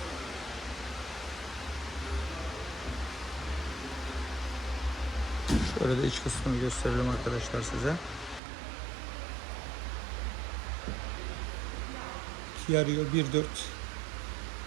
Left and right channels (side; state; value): left; drops out; at 8.4 s